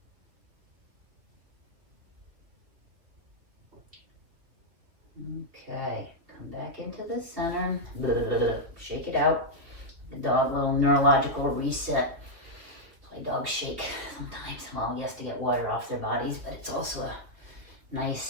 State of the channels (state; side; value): late; left; 2.5 ms